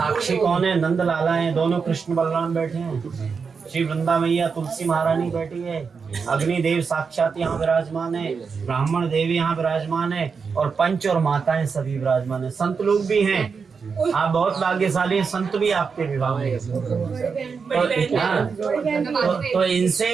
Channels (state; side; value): quieter; left; 5.5 dB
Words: कौन है? नंद लाला हैं, दोनों कृष्ण बलराम बैठे हैं, श्री वृंदा मैया तुलसी महारानी बैठी है, अग्निदेव साक्षात यहाँ विराजमान है, ब्राह्मण देव यहाँ विराजमान है और पंच और माताएं सभी विराजमान है, संत लोग भी हैं। आप बहुत भाग्यशाली हैं, संत भी आपके विवाह में तो इनसे